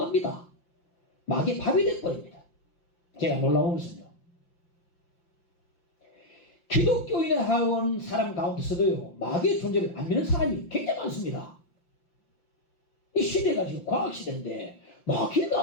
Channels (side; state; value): right; late; 5.7 ms